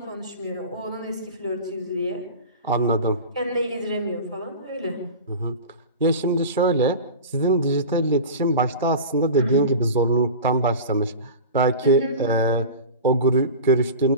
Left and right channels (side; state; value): both; inverted; correlation -0.32